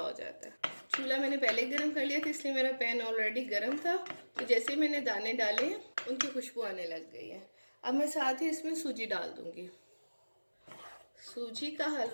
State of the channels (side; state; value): both; inverted; correlation -1.00